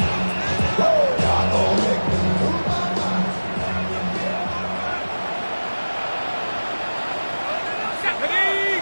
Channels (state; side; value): inverted; both; correlation -1.00